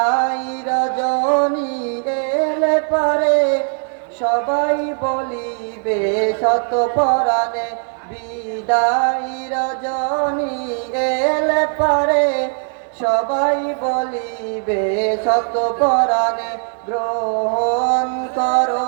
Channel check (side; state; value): left; silent; 57 dB below the other